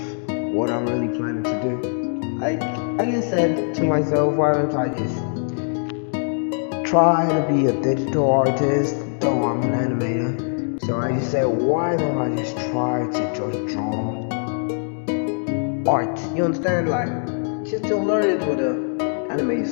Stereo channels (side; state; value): right; silent; 62 dB below the other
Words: what I'm really planning to do. I just said to myself, why don't I just try to be a digital artist, though I'm an animator. So I just said, why don't I just try to just draw art? You understand? Like, just to learn it with the animated